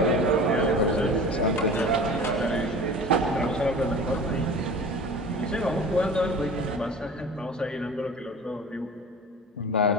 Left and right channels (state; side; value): normal; both; correlation 0.38